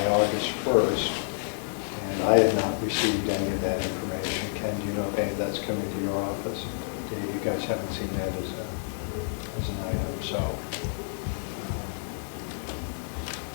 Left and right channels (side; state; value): right; silent; digital silence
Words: August 1st, and I had not received any of that information. Ken, do you know if any of that's coming to your office? You guys haven't seen that as an item, so.